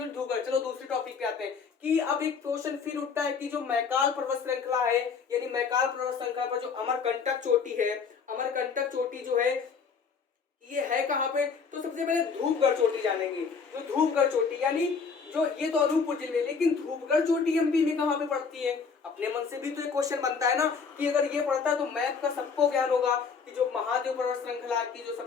धूपगढ़। चलो दूसरे टॉपिक पे आते हैं कि अब एक क्वेश्चन फिर उठता है कि जो मैकाल पर्वत श्रृंखला है, यानी मैकाल पर्वत श्रृंखला पर जो अमरकंटक चोटी है, अमरकंटक चोटी जो है ये है कहाँ पे, तो सबसे पहले धूपगढ़ चोटी जानेंगे। जो धूपगढ़ चोटी यानी जो ये तो अनूपपुर जिले में, लेकिन धूपगढ़ चोटी एमपी में कहाँ पे पड़ती है, अपने मन से भी तो एक क्वेश्चन बनता है ना कि अगर ये पड़ता है तो मैप का सबको ज्ञान होगा कि जो महादेव पर्वत श्रृंखला की जो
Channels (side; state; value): right; quieter; 5.6 dB